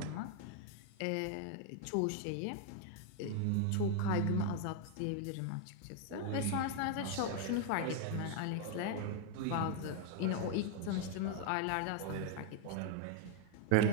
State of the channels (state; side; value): different; both; correlation 0.00